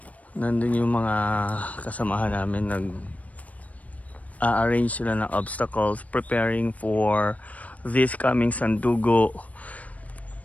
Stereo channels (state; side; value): late; right; 0.070 ms